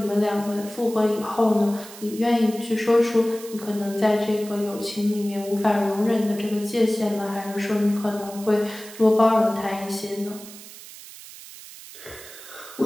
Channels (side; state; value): right; noise; hiss, 16 dB below the sound